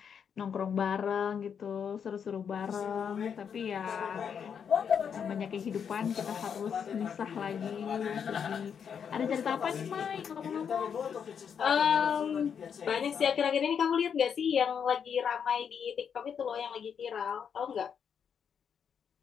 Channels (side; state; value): right; quieter; 7.4 dB